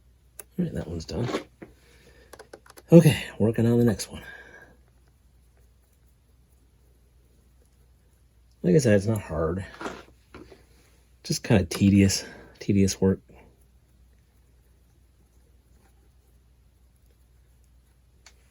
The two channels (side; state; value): both; identical; correlation 1.00